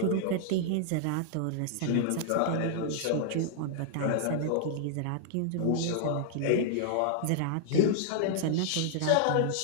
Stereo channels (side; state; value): both; different; correlation -0.01